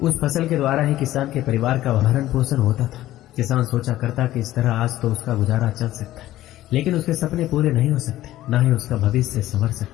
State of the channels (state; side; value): quieter; right; 14.6 dB